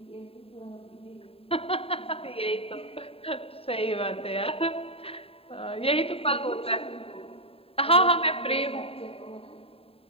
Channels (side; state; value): right; late; 0.27 ms